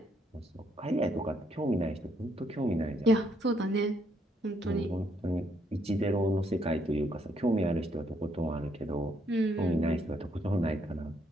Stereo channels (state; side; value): normal; both; correlation 0.72